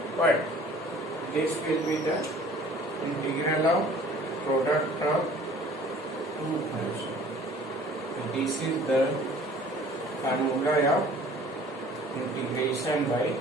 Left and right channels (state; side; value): normal; both; correlation 0.50